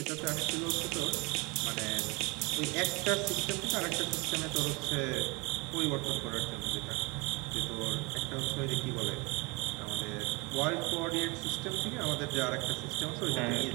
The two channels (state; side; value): quieter; left; 27.7 dB